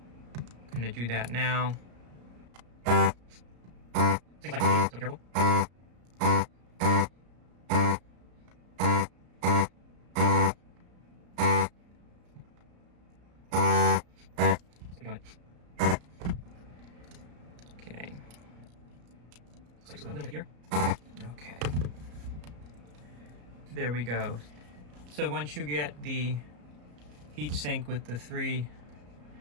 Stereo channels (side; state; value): left; late; 34 ms